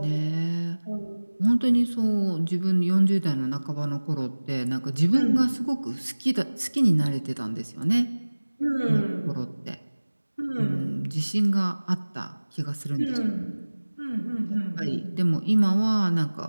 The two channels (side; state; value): both; inverted; correlation -1.00